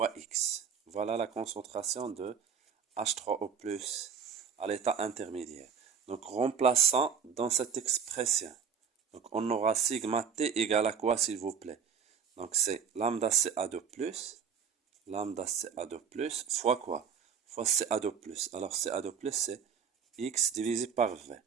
X. Voilà la concentration de H3O+ à l'état intermédiaire. Donc, remplaçant dans cette expression. Donc, on aura sigma T égale à quoi, s'il vous plaît? Donc, c'est lambda CA2+, fois quoi? Fois CA2+. Alors, CA2+, c'est X divisé par V.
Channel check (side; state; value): left; quieter; 6.8 dB